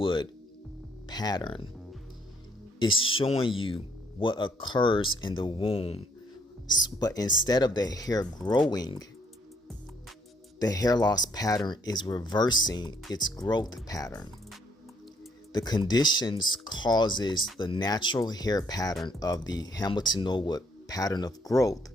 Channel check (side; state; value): both; normal; correlation 0.68